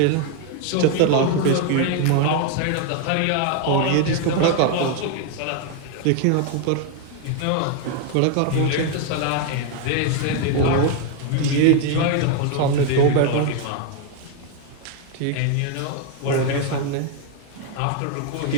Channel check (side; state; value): both; different; correlation 0.01